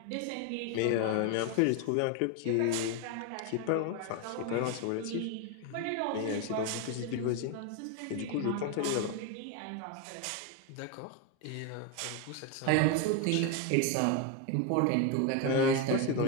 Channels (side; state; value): both; different; correlation 0.02